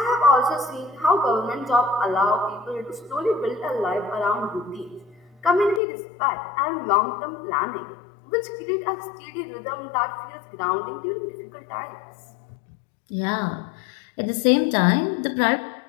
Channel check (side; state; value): right; drops out; at 5.8 s